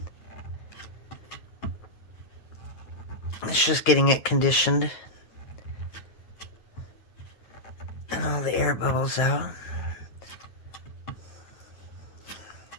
It's just getting it conditioned. And all the air bubbles out.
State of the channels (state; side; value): late; right; 9.1 ms